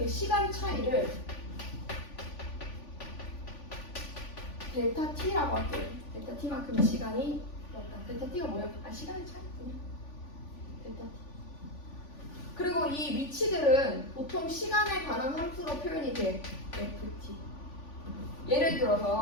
시간 차이를 델타 t라고 할게요. 델타 t만큼의 시간이 그렇다. 델타 t가 뭐예요? 시간의 차이군요. 델타 t. 그리고 이 위치들은 보통 시간에 관한 함수로 표현이 돼. ft. 예를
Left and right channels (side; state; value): right; late; 3.5 ms